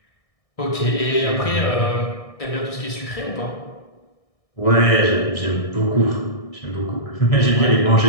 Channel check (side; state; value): right; late; 1.6 ms